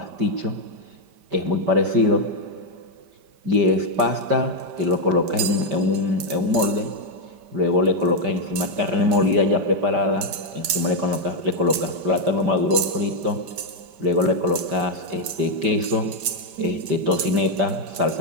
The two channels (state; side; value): late; left; 5.1 ms